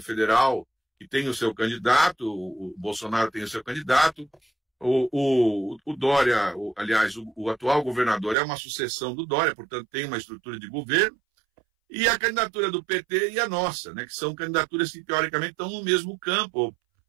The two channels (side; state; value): left; drops out; at 8.3 s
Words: federal, que tem o seu candidato, o Bolsonaro tem o seu candidato, o Dória, aliás, o atual governador é uma sucessão do Dória, portanto tem uma estrutura de governo, e a candidatura do PT e a nossa, né, que são candidaturas que teoricamente estão no mesmo campo,